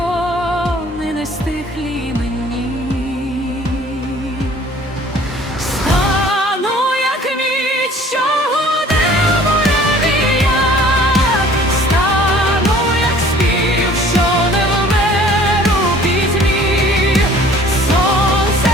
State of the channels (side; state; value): both; normal; correlation 0.51